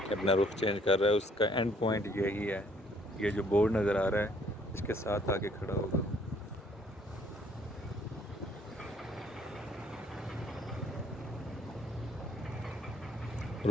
अपना रुख चेंज कर रहा है, उसका एंड पॉइंट यही है। ये जो बोर्ड नज़र आ रहा है इसके साथ आके खड़ा होगा और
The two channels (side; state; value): both; normal; correlation 0.63